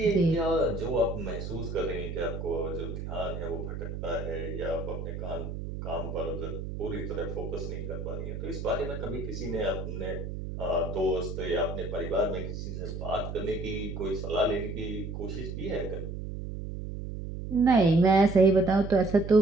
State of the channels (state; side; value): noise; right; hum, 6 dB below the sound